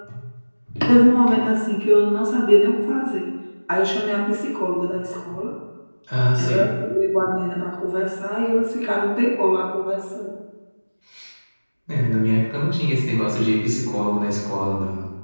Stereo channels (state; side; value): inverted; both; correlation -1.00